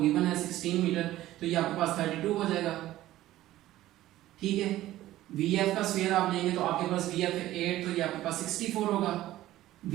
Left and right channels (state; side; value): quieter; left; 14.9 dB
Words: है 16 मीटर तो ये आपके पास 32 हो जाएगा। ठीक है, vf का स्क्वायर आप लेंगे तो आपके पास vf 8 तो ये आपके पास 64 होगा,